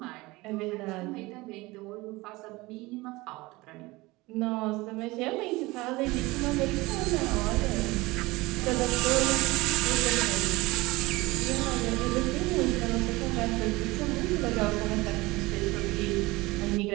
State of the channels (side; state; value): left; quieter; 21.5 dB